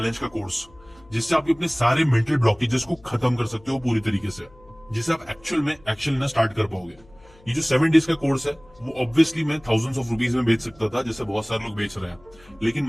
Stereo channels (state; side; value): noise; left; hum, 27 dB below the sound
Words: का कोर्स, जिससे आप अपने सारे मेंटल ब्लॉकेजेस को खत्म कर सकते हो पूरी तरीके से, जिससे आप एक्चुअल में एक्शन लेना स्टार्ट कर पाओगे। ये जो 7 डेज का कोर्स है वो ऑब्वियसली मैं थाउजेंड्स ऑफ रुपीज में बेच सकता था, जैसे बहुत सारे लोग बेच रहे हैं, लेकिन